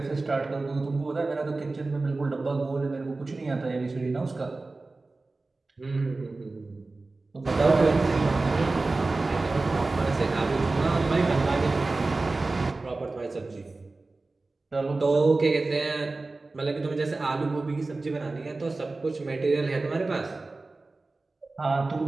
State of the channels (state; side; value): quieter; left; 3.4 dB